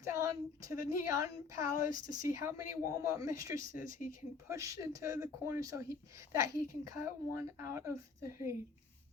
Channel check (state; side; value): quieter; right; 5.0 dB